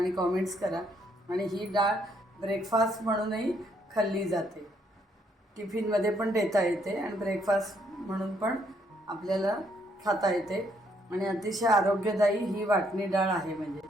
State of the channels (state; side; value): normal; both; correlation 0.71